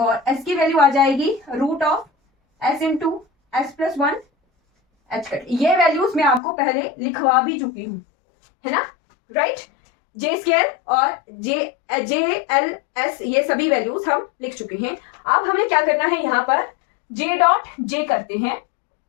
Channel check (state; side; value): drops out; right; at 6.4 s